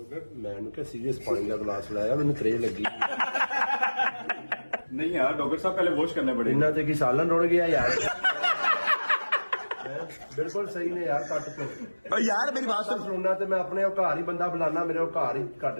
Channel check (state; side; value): inverted; both; correlation -1.00